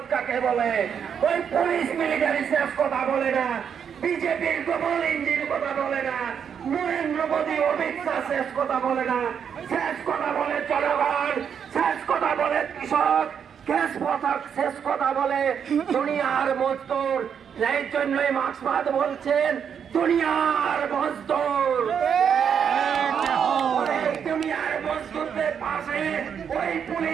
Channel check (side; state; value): left; quieter; 7.6 dB